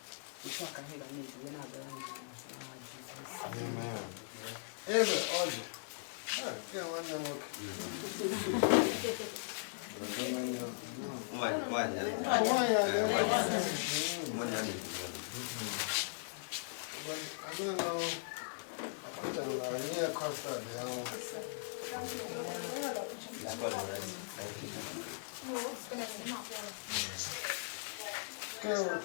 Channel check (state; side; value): silent; right; digital silence